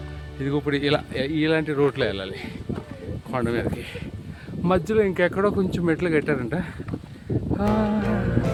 ఇది ఇప్పుడు ఇలాంటి రోడ్లో వెళ్ళాలి కొండ మీదకి. మధ్యలో ఇంకెక్కడో కొంచెం మెట్లు కట్టారంట.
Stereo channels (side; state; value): both; identical; correlation 1.00